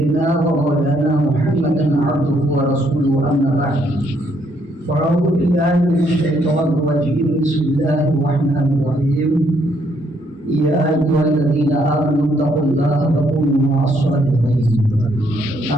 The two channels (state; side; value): normal; both; correlation 0.71